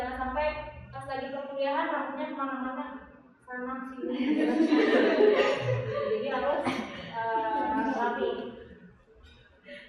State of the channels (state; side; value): identical; both; correlation 1.00